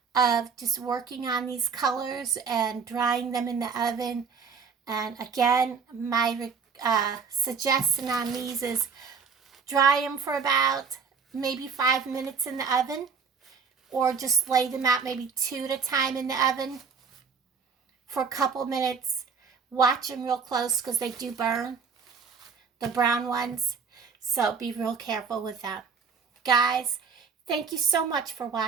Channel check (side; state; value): left; quieter; 5.7 dB